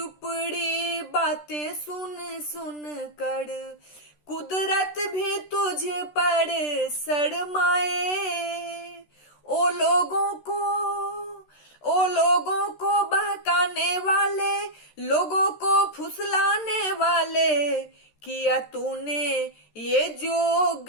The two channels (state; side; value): late; right; 13 ms